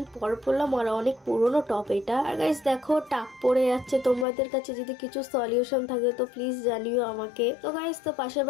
পর পরলাম আর অনেক পুরনো টপ এটা। আর গাইস দেখো, টাক পড়ে যাচ্ছে। তোমাদের কাছে যদি কিছু সলিউশন থাকে তো প্লিজ জানিও আমাকে। তো গাইস, তো পাশের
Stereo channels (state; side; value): drops out; right; at 4.2 s